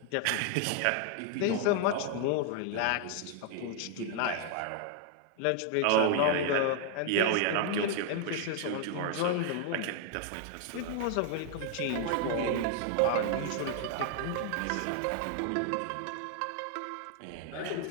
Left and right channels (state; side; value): different; both; correlation 0.00